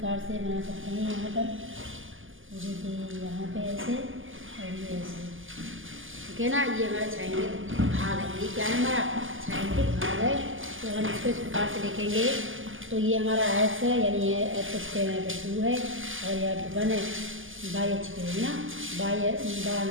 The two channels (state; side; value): late; left; 0.58 ms